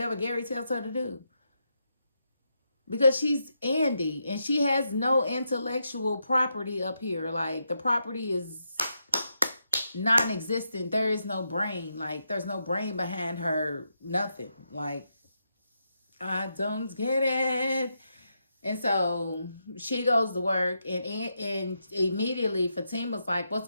Gary tells her to do. Because she's Andy, and she has no intellectual property up here. Like, the property is non-existent. There is no brain. Like, there's no brain behind her. Nothing. Like, I don't get it. And so she goes to work, and immediately Fatima's like, "What's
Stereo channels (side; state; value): both; inverted; correlation -0.83